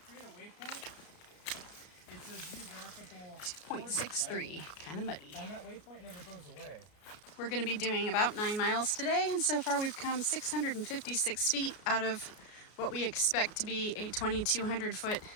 2.63, kind of muddy. And that waypoint never goes away. We're going to be doing about 9 miles today, and so far we've come 656 feet out of what we expect to be a 2,200 foot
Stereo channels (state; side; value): late; right; 33 ms